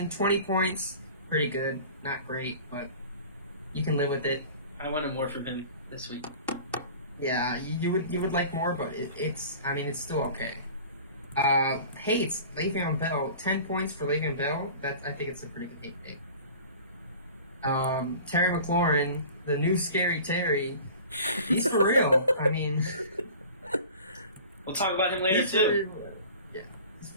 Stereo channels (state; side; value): inverted; both; correlation -0.42